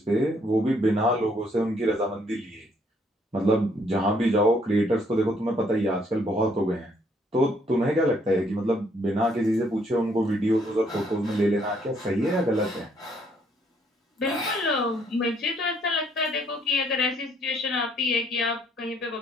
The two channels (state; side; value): normal; both; correlation 0.67